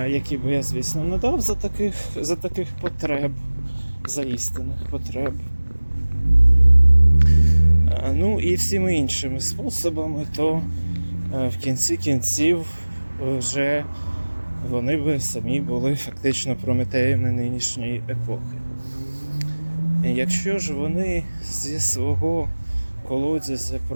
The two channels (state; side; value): inverted; both; correlation -1.00